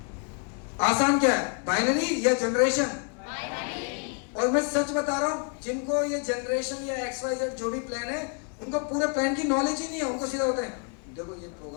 आसान क्या है, बाइनरी या जनरेशन? और मैं सच बता रहा हूं, जिनको ये जनरेशन या XYZ जो भी प्लान है, उनको पूरे प्लान की नॉलेज ही नहीं है। उनको सीधा होता है, देखो ये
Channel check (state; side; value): quieter; right; 38.0 dB